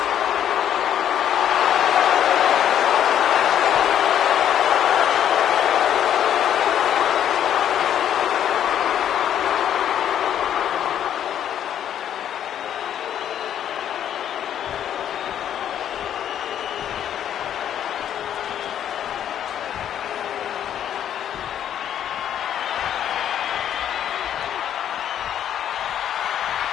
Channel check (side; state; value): right; quieter; 10.1 dB